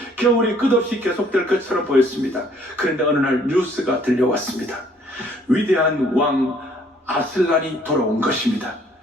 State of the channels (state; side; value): normal; both; correlation 0.61